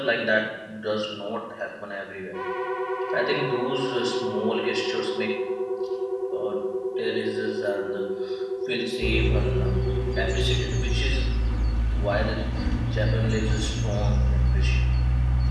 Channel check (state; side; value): identical; both; correlation 1.00